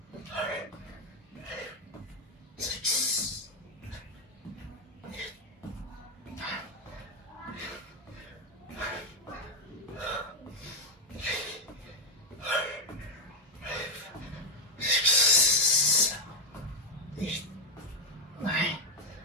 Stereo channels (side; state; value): both; normal; correlation 0.06